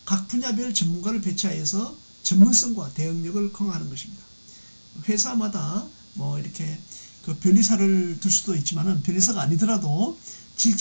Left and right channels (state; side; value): inverted; both; correlation -1.00